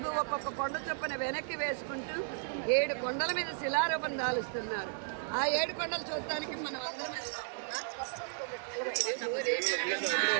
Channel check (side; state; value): left; silent; digital silence